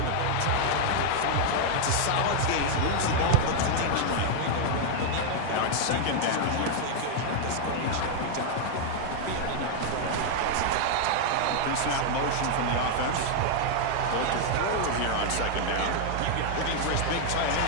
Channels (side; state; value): both; different; correlation 0.00